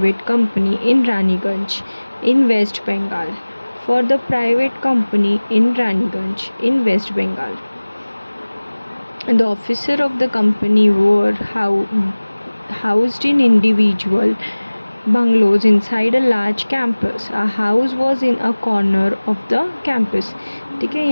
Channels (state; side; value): inverted; both; correlation -1.00